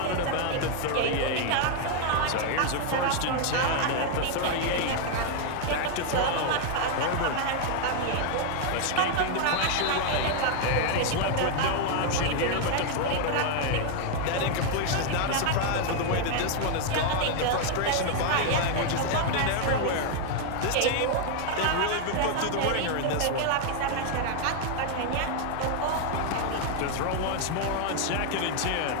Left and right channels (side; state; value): both; different; correlation 0.00